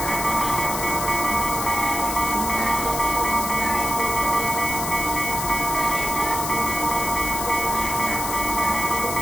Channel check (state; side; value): noise; left; hiss, 5 dB below the sound